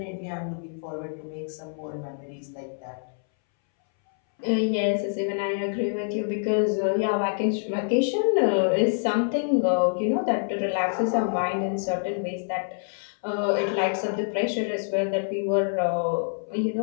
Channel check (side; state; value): right; silent; 61 dB below the other